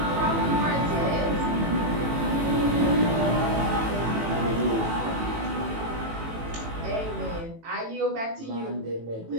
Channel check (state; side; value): late; left; 18 ms